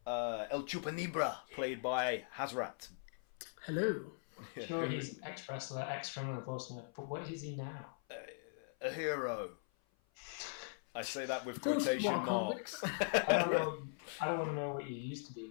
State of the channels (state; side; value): silent; right; 51 dB below the other